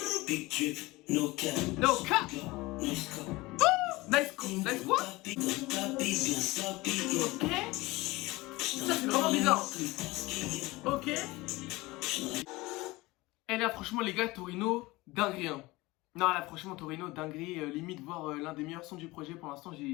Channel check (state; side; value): quieter; right; 21.1 dB